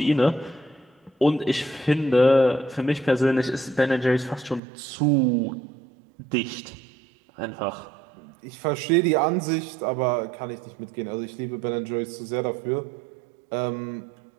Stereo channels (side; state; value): left; drops out; at 4.6 s